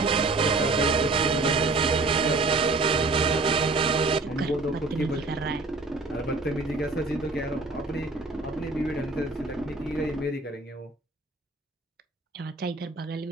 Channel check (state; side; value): quieter; left; 3.4 dB